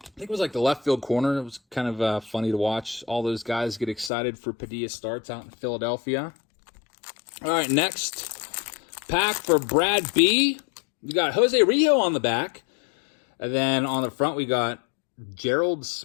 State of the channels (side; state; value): right; drops out; at 4.1 s